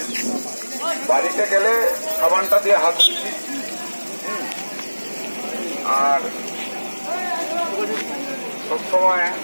বাড়িতে গেলে সাবানটা দিয়ে হাত ধুচ্ছি, আর সবসময়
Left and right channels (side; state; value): both; inverted; correlation -1.00